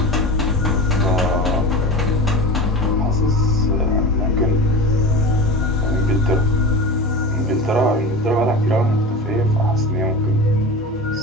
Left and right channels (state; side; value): normal; both; correlation 0.31